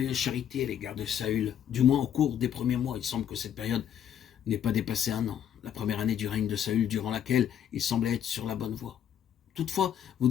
charité à l'égard de Saül, du moins au cours des premiers mois. Il semble que cette période n'ait pas dépassé 1 an, la première année du règne de Saül, durant laquelle il semblait être sur la bonne voie. Toutefois, vous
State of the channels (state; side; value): quieter; right; 9.5 dB